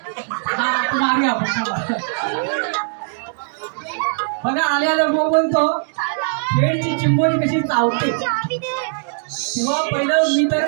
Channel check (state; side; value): silent; left; digital silence